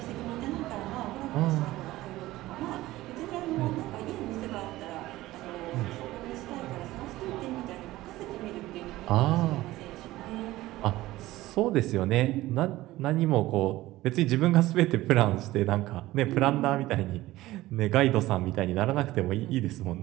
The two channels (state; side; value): quieter; left; 17.1 dB